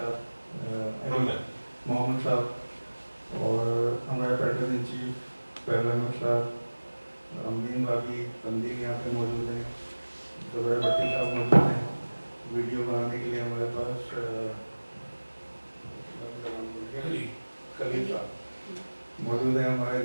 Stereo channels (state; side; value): inverted; both; correlation -1.00